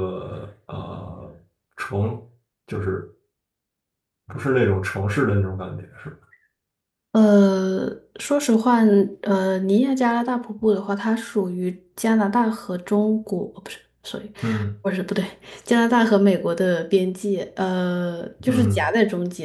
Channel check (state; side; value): identical; both; correlation 1.00